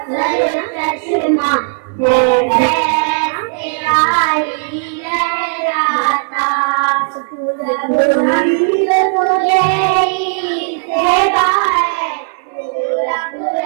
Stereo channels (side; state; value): left; silent; digital silence